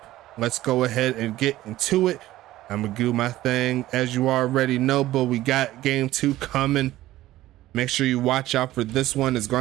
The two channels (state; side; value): quieter; left; 15.5 dB